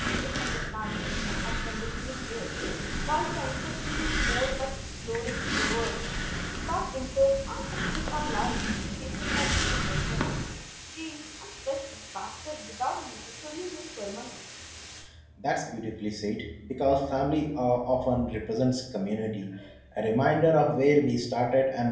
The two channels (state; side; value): identical; both; correlation 1.00